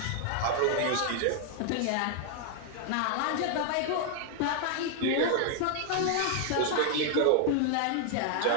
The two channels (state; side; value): different; both; correlation 0.00